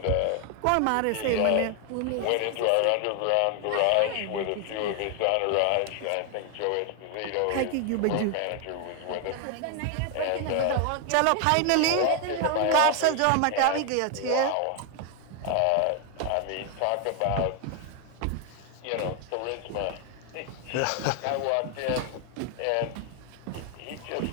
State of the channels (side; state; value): both; different; correlation 0.00